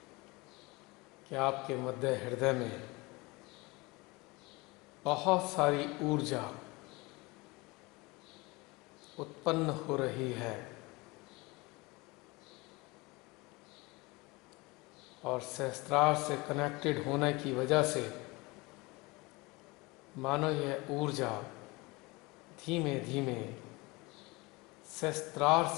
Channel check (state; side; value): quieter; right; 24.2 dB